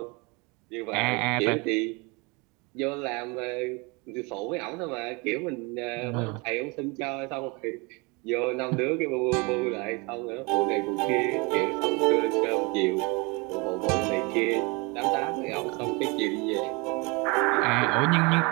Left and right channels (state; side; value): quieter; left; 28.3 dB